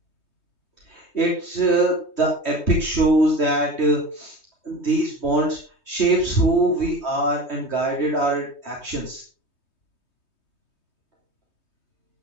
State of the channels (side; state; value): right; late; 3.2 ms